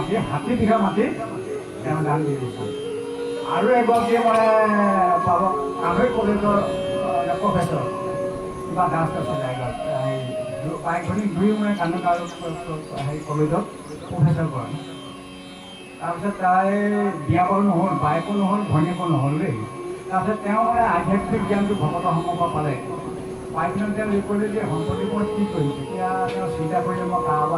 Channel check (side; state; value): both; identical; correlation 1.00